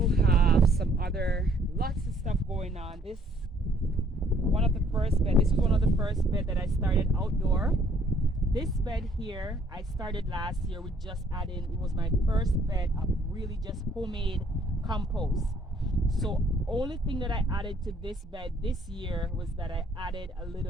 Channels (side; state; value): both; normal; correlation 0.62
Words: have some other lots of stuff going on. This was one of the first bed that I started outdoor. This bed here I started last year with just adding, it was my first bed of really just homemade compost. So only thing that I added to this bed this year was that I added a